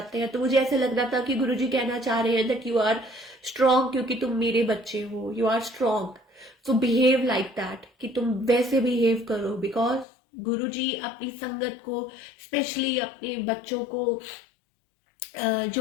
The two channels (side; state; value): right; drops out; at 10.1 s